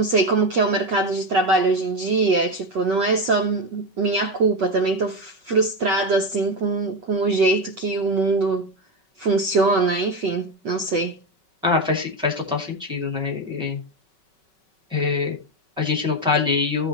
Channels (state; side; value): late; left; 5.3 ms